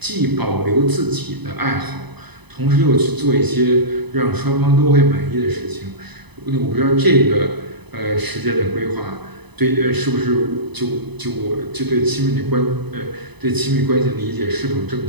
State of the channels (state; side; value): late; left; 0.99 ms